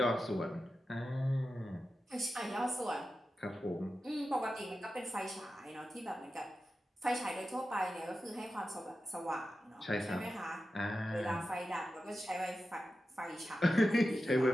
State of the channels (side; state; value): both; normal; correlation 0.92